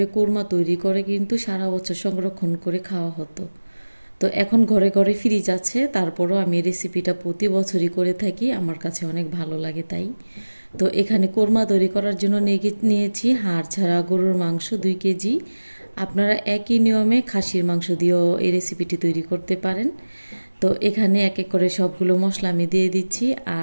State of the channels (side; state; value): both; inverted; correlation -1.00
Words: কোরমা তৈরি করে কিন্তু সারা বছর সংরক্ষণ করে খাওয়া হতো। তো এখন ঘরে ঘরে ফ্রিজ আছে, তারপরও আমি রেসিপিটা প্রতি বছরই করে থাকি, আমার কাছে অনেক ভালো লাগে তাই। তো এখানে কোরমা তৈরি করার জন্য নিয়েছি হাড় ছাড়া গরুর মাংস 2 কেজি। আপনারা একই নিয়মে খাসির মাংস দিয়েও এই রেসিপিটি তৈরি করতে পারেন। তো এখানে এক এক করে সবগুলো মশলা আমি দিয়ে দিচ্ছি,